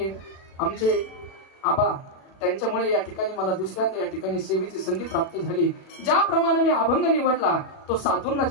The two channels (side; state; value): right; late; 37 ms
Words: आमचे आबा, त्यांच्यामुळे या ठिकाणी मला दुसऱ्यांदा या ठिकाणी सेवेची संधी प्राप्त झाली. ज्याप्रमाणे मी अभंग निवडला तो साधूंना